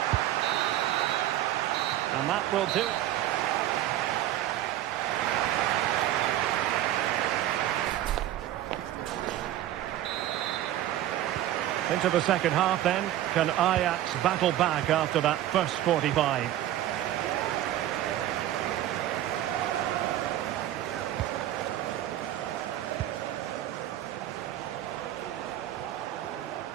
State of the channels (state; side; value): quieter; left; 13.0 dB